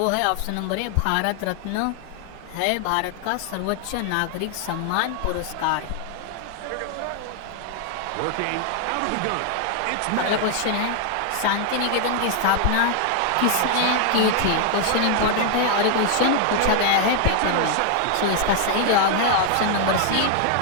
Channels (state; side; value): different; both; correlation 0.00